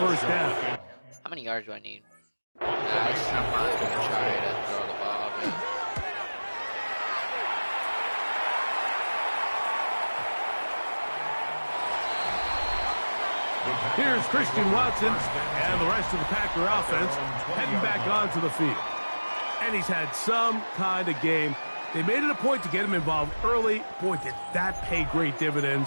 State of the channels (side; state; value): both; inverted; correlation -1.00